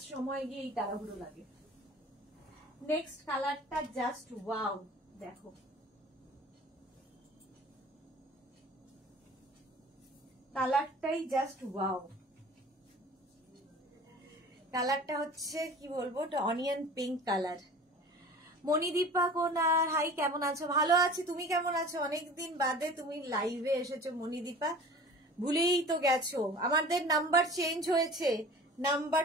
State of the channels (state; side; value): normal; both; correlation 0.42